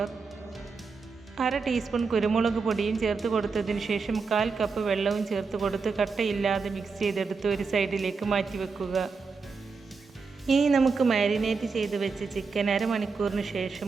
1/2 teaspoon കുരുമുളക് പൊടിയും ചേർത്ത് കൊടുത്തതിന് ശേഷം 1/4 കപ്പ് വെള്ളവും ചേർത്ത് കൊടുത്ത് കട്ടയില്ലാതെ മിക്സ് ചെയ്തെടുത്ത് ഒരു സൈഡിലേക്ക് മാറ്റി വെക്കുക. ഇനി നമുക്ക് മാരിനേറ്റ് ചെയ്ത് വെച്ച് ചിക്കൻ അരമണിക്കൂറിന്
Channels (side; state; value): left; quieter; 4.8 dB